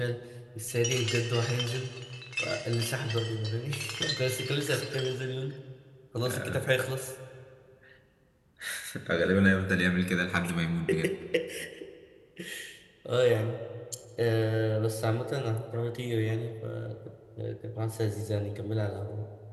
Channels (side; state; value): both; identical; correlation 1.00